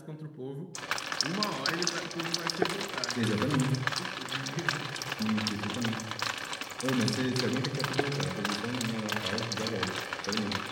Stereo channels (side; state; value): both; identical; correlation 1.00